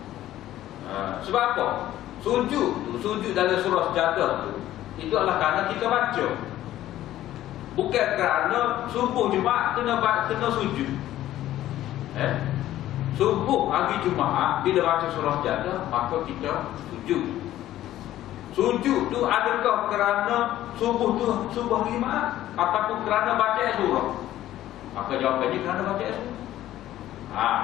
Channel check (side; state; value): right; quieter; 13.6 dB